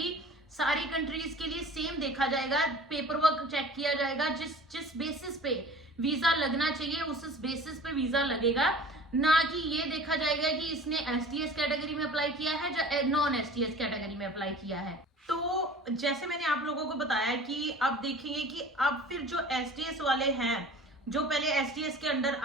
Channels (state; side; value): normal; both; correlation 0.43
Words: सारी कंट्रीज के लिए सेम देखा जाएगा, पेपर वर्क चेक किया जाएगा, जिस बेसिस पे वीजा लगना चाहिए उस बेसिस पे वीजा लगेगा, ना कि ये देखा जाएगा कि इसने एसटीएस कैटेगरी में अप्लाई किया है या नॉन एसटीएस कैटेगरी में अप्लाई किया है। तो जैसे मैंने आप लोगों को बताया कि अब देखेंगे कि अब फिर जो एसटीएस वाले हैं, जो पहले एसटीएस के अंडर